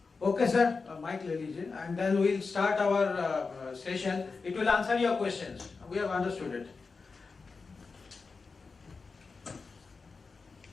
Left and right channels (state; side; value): quieter; right; 4.5 dB